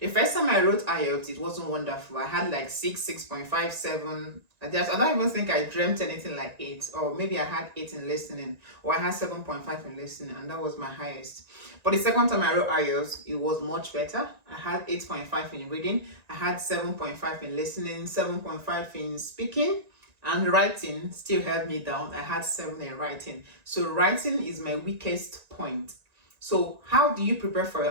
first time I wrote IELTS, it wasn't wonderful. I had like 6.5, 7. I don't even think I dreamt anything like 8. Or maybe I had 8 in listening. Or I had 7.5 in listening, and that was my highest. But the second time I wrote IELTS, it was much better. I had 8.5 in reading. I had 7.5 in listening, 7.5 in speaking. And writing still held me down. I had 7 in writing. So writing is my weakest point. So how do you prepare for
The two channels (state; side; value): late; left; 1.9 ms